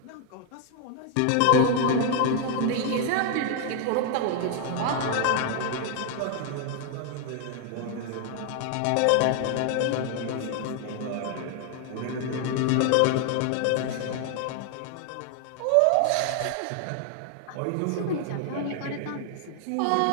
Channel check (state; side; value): different; both; correlation 0.00